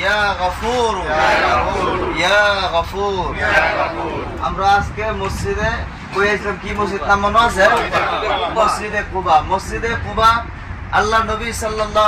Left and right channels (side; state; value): both; identical; correlation 1.00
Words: غفور يا غفور আমরা আজকে মসজিদে কইছিলাম কি মসজিদ নাম মনে আছে মসজিদে কুবা আল্লাহ নবী